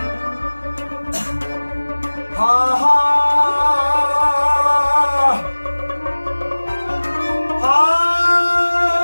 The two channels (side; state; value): both; inverted; correlation -1.00